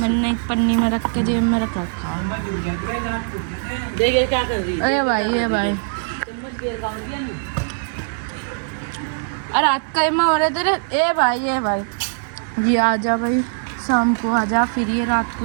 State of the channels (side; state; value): left; silent; digital silence